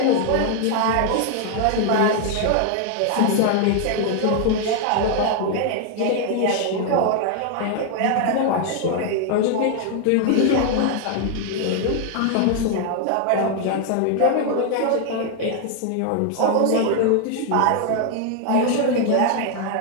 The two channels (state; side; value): different; both; correlation 0.00